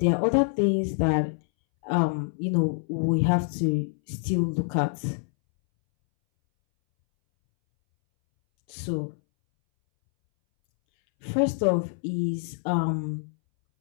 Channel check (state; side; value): silent; right; 61 dB below the other